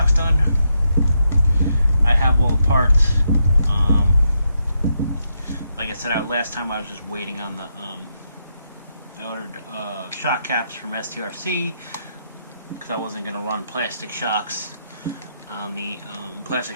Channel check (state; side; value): inverted; both; correlation -0.80